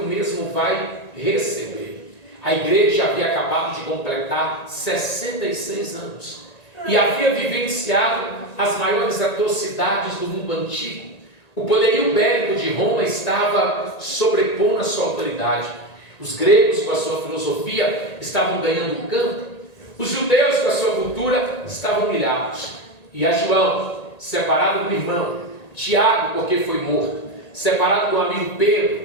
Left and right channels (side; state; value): right; late; 1.9 ms